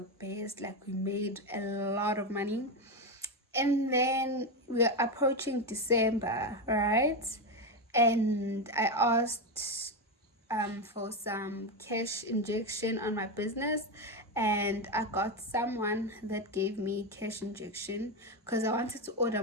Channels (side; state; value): both; normal; correlation 0.11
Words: best, like we made a lot of money. And then we're approaching December, right? And I asked for some cash injection on my business, and I got someone that gave me cash injection because I wanted to order